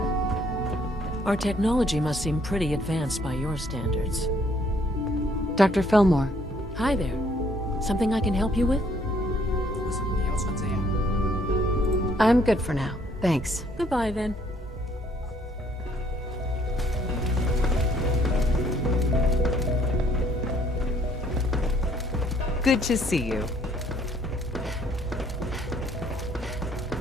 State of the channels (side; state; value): both; normal; correlation 0.64